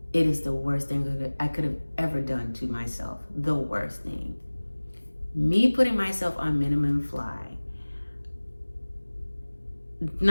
It is the worst thing I could have ever done to myself. The worst thing. Me putting myself on minimum fly,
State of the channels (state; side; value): inverted; both; correlation -1.00